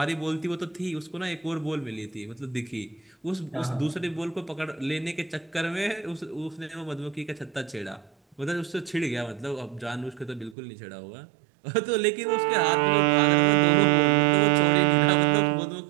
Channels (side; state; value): left; drops out; at 10.6 s